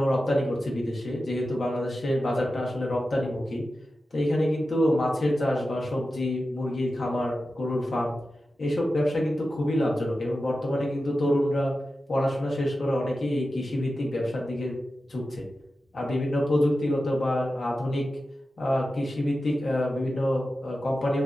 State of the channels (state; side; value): normal; both; correlation 0.92